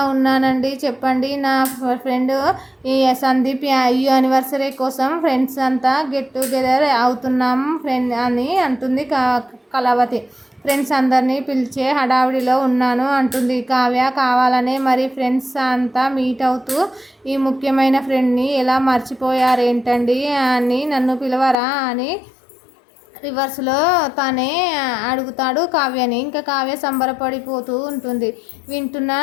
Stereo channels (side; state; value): right; drops out; at 21.6 s